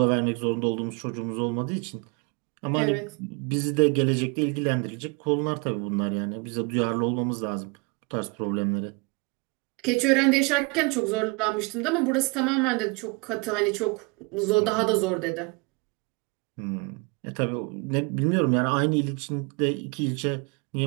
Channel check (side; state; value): left; quieter; 29.3 dB